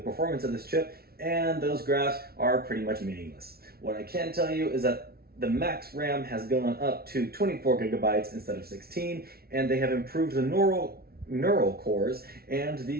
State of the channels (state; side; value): late; left; 0.44 ms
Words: of this chip, and those graphs are pretty much meaningless. What I can tell you is that the max RAM has gone up to 24 gigabytes instead of 16, and they have improved the neural cores and